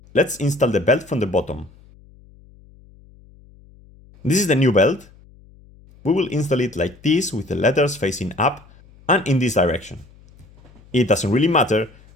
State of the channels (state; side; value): noise; left; hum, 26 dB below the sound